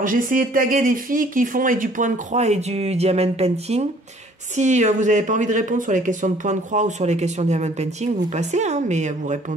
j'ai essayé de taguer des filles qui font et du point de croix et du diamond painting. Si vous n'avez pas envie de répondre sur les questions de point de croix ou sur les questions de diamond painting, vous passez, hein, mais vous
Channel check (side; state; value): both; normal; correlation 0.56